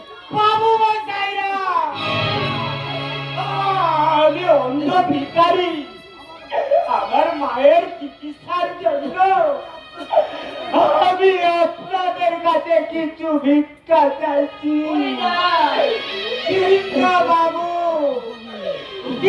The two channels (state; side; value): identical; both; correlation 1.00